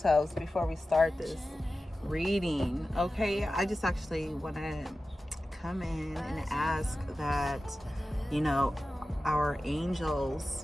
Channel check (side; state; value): both; normal; correlation 0.94